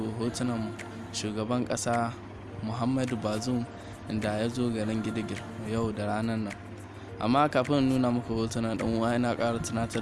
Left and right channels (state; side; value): identical; both; correlation 1.00